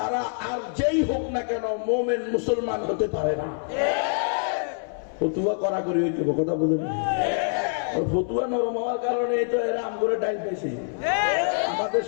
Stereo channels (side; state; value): right; silent; 61 dB below the other